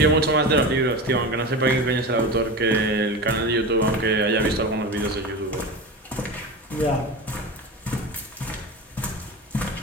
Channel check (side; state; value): both; normal; correlation 0.26